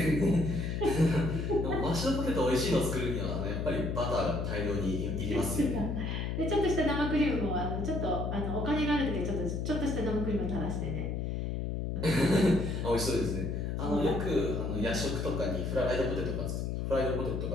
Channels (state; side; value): noise; left; hum, 2 dB below the sound